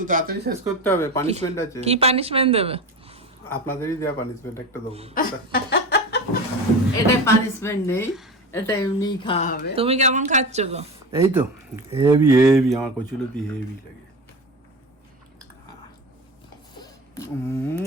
তাড়াতাড়ি শেষ করতে হবে, পানিশমেন্ট আছে। কি পানিশমেন্ট দেবে? আপনাদেরই দেওয়া পানিশমেন্ট একটা দেবো। এটা পানিশমেন্ট নেই, এটা এমনিই খাওয়া হবে। তুমি কেমন খাচ্ছ গো? এই তো হেভি হেভি, আমার কচুলতি হেভি লাগে।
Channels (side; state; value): both; normal; correlation 0.27